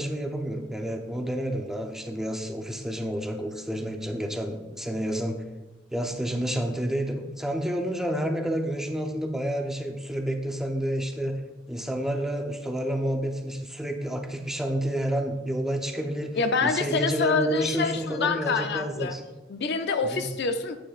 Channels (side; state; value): both; normal; correlation 0.57